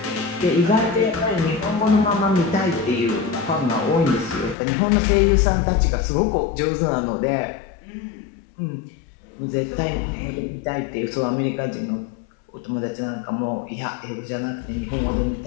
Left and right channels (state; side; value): drops out; right; at 4.5 s